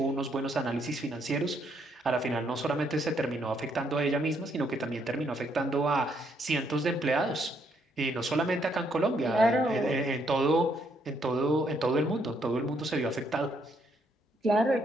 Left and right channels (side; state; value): both; normal; correlation 0.72